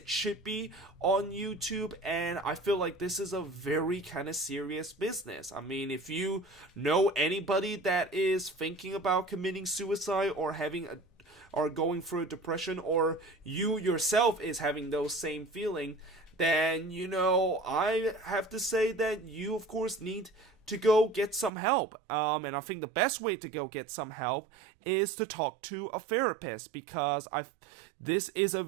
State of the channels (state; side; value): drops out; left; at 21.5 s